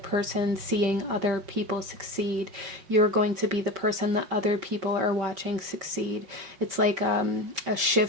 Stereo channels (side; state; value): left; late; 5.5 ms